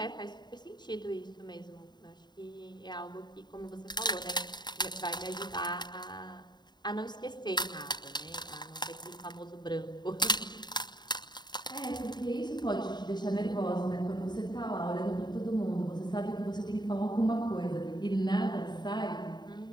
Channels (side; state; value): right; late; 0.21 ms